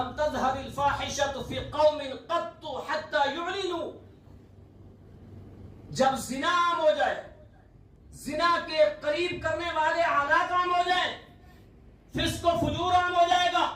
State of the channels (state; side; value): identical; both; correlation 1.00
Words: تظہر الفاحشۃ فی قوم قط حتی یعلنوا، جب زنا عام ہو جائے، زنا کے قریب کرنے والے حالات عام ہو جائیں، فسق و فجور عام ہو جائے گا،